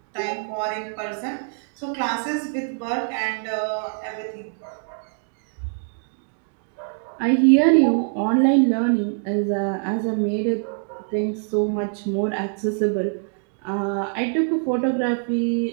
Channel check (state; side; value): silent; left; digital silence